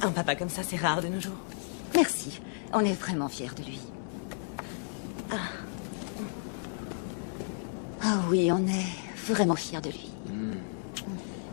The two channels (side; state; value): right; silent; 56 dB below the other